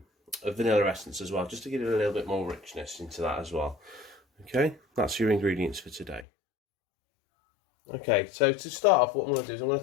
vanilla essence as well, just to give it a little bit more richness into that as well. Okay, that's your ingredients for today. Okay, so to start off, what I'm going to do is I'm going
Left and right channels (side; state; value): right; drops out; at 6.2 s